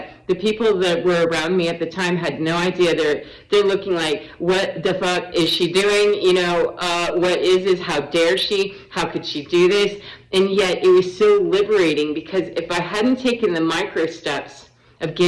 the people that were around me at the time had no idea. They're looking like, what the fuck is she doing? What is this? How dare she? How could she do this? And yet it was so liberating, because if I hadn't taken the micro steps of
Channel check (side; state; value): both; identical; correlation 1.00